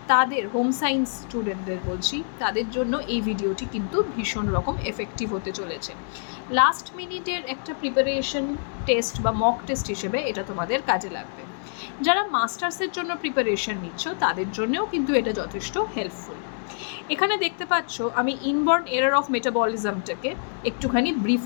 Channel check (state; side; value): silent; right; digital silence